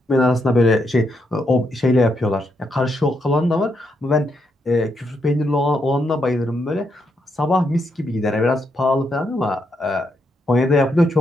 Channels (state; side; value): normal; both; correlation 0.80